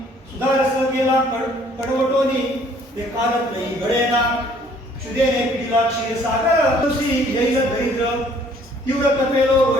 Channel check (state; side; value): normal; both; correlation 0.59